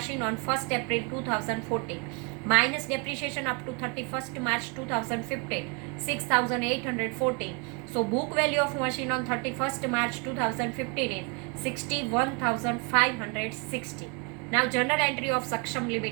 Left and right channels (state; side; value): quieter; left; 32.2 dB